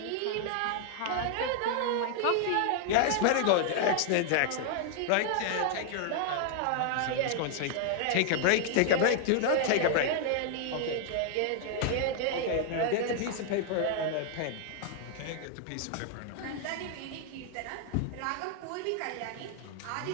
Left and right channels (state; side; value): different; both; correlation 0.00